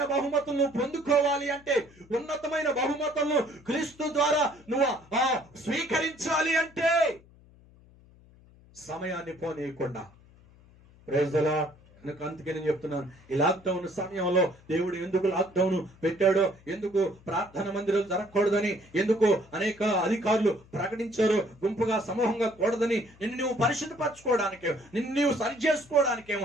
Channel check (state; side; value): noise; left; hum, 26 dB below the sound